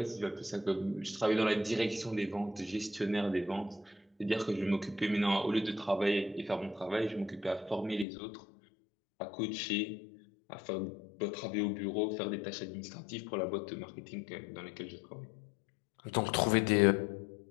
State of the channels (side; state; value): right; drops out; at 8.1 s